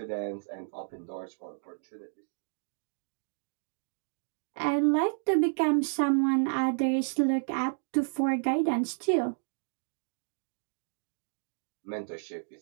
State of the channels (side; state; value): left; silent; digital silence